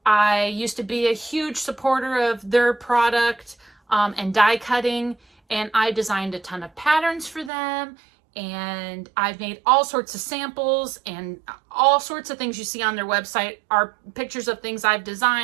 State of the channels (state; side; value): drops out; left; at 7.5 s